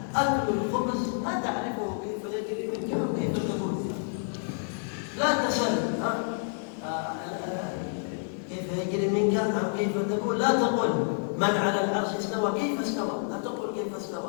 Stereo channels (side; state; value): right; silent; digital silence